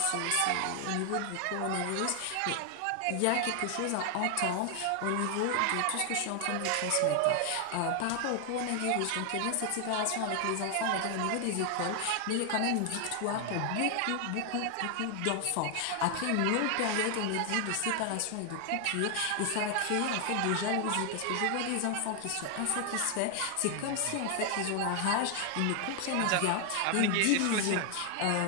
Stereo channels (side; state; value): both; different; correlation 0.00